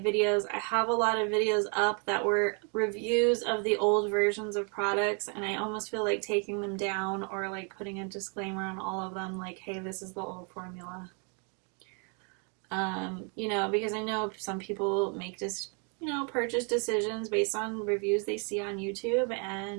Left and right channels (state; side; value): quieter; left; 37.6 dB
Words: I have a lot of videos up that were reviews of the old versions of products, and I almost feel like taking them down or like putting a disclaimer on all of them, like, hey, this is the old formula. You know, because I know some people make this, you know, purchase decisions based on reviews they see on YouTube,